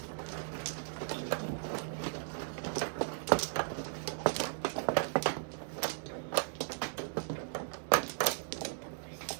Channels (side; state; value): left; silent; digital silence